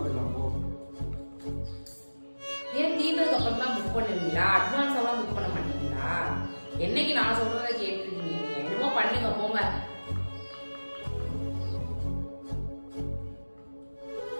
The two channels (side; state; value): both; inverted; correlation -1.00